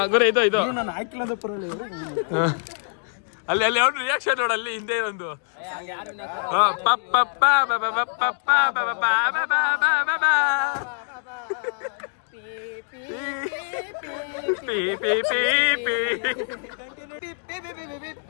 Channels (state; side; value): silent; right; digital silence